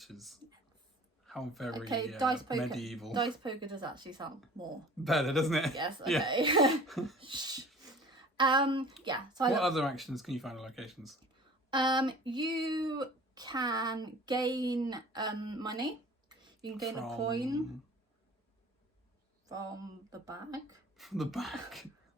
How very medieval. Dice poker does actually sound more better, doesn't it? Yes. Okay. Yeah. Yeah. So What other actions can you find in locations? you can gain money. You can gain a coin from the bag. From the bag.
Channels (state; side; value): normal; both; correlation 0.45